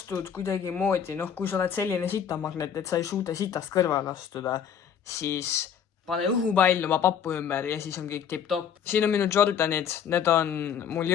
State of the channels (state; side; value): quieter; right; 8.1 dB